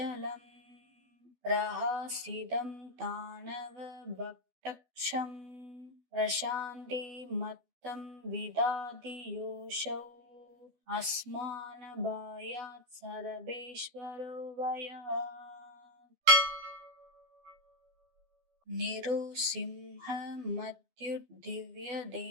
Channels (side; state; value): left; late; 12 ms